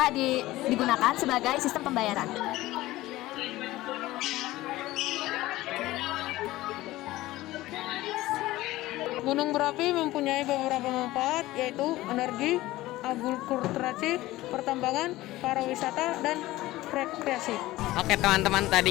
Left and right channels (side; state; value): right; quieter; 17.3 dB